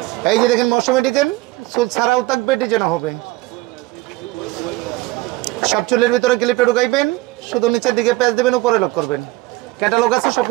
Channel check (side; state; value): left; quieter; 19.8 dB